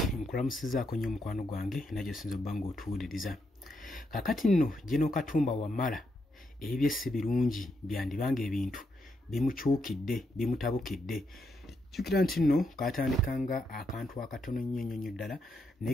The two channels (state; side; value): normal; both; correlation 0.80